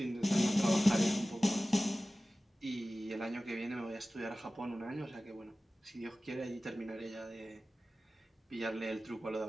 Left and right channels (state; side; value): normal; both; correlation 0.96